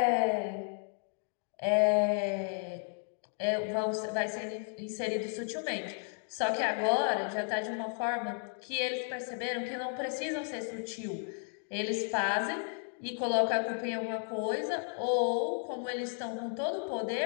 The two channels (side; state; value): right; silent; 55 dB below the other